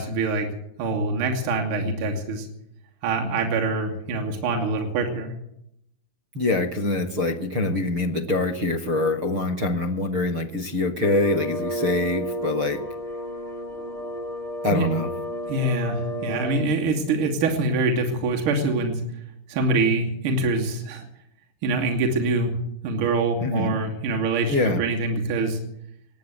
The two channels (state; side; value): late; left; 6.6 ms